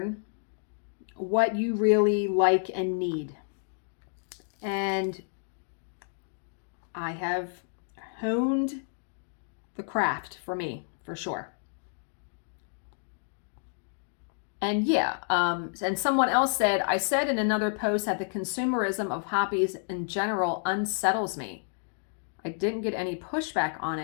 what you really like and need. And I have honed the craft for me, for sure. And yeah, and someone else said, I said in another post that the consumerism of hobbies in general unsettles me. I didn't get any pushback on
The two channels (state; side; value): silent; right; digital silence